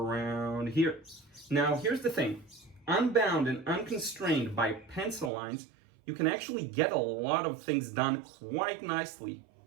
here. Now here's the thing, unbound and unconstrained by pencil lines, you can actually get a lot of things done quite nicely,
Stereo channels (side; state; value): left; drops out; at 5.3 s